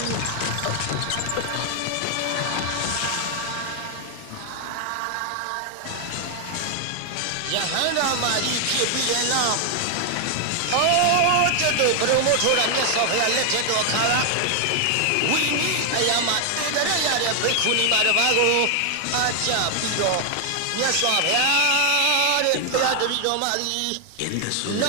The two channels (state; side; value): different; both; correlation 0.00